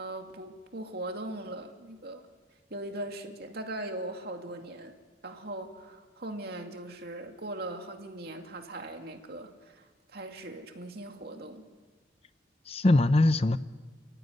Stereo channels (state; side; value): normal; both; correlation 0.74